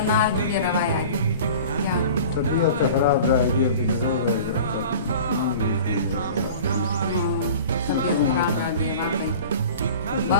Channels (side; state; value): both; inverted; correlation -0.40